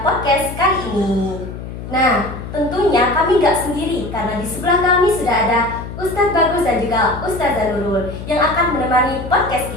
podcast kali ini. Nah, tentunya kami nggak sendiri, karena di sebelah kami sudah ada Ustadz Bagus dan juga Ustazah Nurul yang akan menemani podcast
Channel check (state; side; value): noise; left; hum, 10 dB below the sound